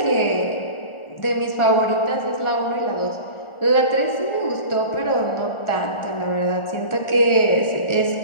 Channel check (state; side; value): late; right; 1.4 ms